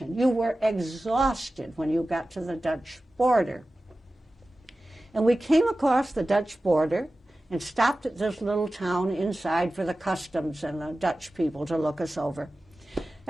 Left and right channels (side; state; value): both; normal; correlation 0.95